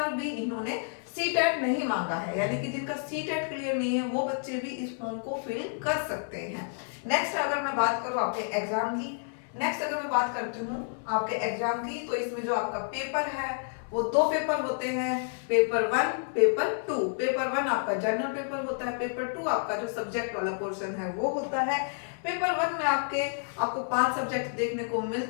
भी इन्होंने सीटेट नहीं मांगा है, यानी कि जिनका सीटेट क्लियर नहीं है वो बच्चे भी इस फॉर्म को फिल कर सकते हैं। नेक्स्ट अगर मैं बात करूं आपके एग्जाम की, नेक्स्ट अगर मैं बात करती हूँ आपके एग्जाम की, तो इसमें जो आपका पेपर है वो 2 पेपर होते हैं, पेपर 1 पेपर 2। पेपर 1 आपका जनरल पेपर होता है, पेपर 2 आपका जो सब्जेक्ट वाला पोर्शन है वो होता है। पेपर 1 में आपको 5 सब्जेक्ट देखने को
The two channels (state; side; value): silent; right; 58 dB below the other